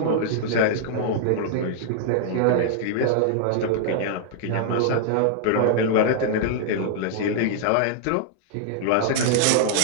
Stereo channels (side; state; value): both; different; correlation -0.01